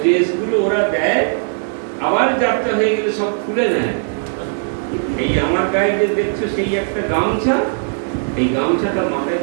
ড্রেসগুলো ওরা দেয়, আবার যাত্রা হয়ে গেলে সব খুলে নেয়। এই আমার গায়ে যে দেখছো সেই একটা গামছা, এই গামছাটা মাথায়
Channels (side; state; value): left; silent; digital silence